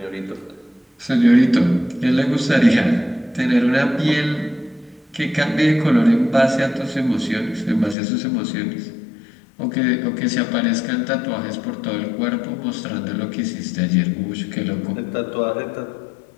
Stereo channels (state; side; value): drops out; right; at 8.0 s